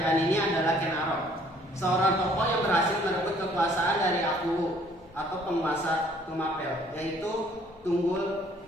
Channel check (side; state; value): both; normal; correlation 0.60